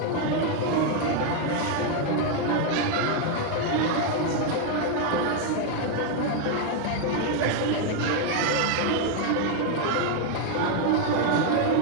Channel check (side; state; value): both; different; correlation 0.01